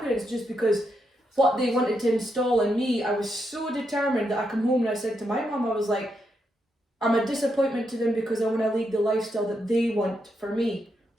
just because what they wanted to install in me. I was so determined that I come home and I said to my mum, I was like, I'm a disappointment to them because I want to lead the lifestyle that they want for me.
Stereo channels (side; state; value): both; normal; correlation 0.82